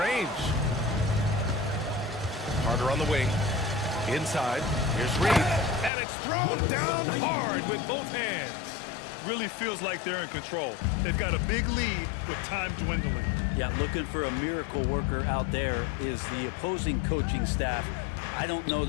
Carter on the wing. Inside. Here's Reed. And it's thrown down hard with both hands. Really feels like they're in control. They've got a big lead with time dwindling. Yeah, looking for a miracle worker out there is the opposing coaching staff. I don't know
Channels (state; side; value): drops out; right; at 5.9 s